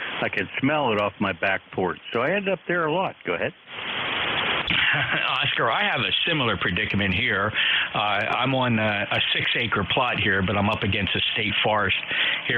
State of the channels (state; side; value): identical; both; correlation 1.00